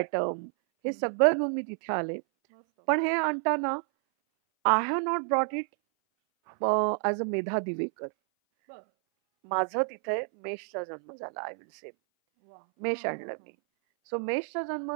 हे सगळं घेऊन मी तिथे आले. पण हे आणताना I have not brought it as a Medha Diwekar. माझं तिथे मेषचा जन्म झाला. आय विल से मेष आणलं मी. सो मेषचा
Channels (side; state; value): left; silent; 58 dB below the other